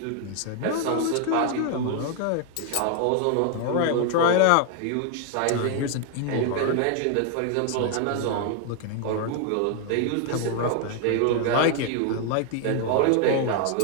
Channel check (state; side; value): different; both; correlation 0.00